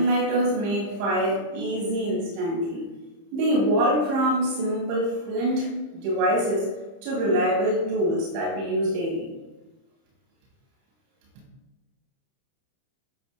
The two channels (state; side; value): late; left; 30 ms